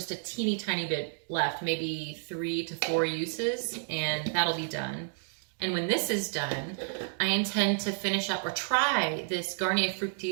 a teeny tiny bit left, maybe 3 to 4 uses, and that'll be done. And when this is done, I intend to finish up or try this Garnier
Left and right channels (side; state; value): left; silent; 57 dB below the other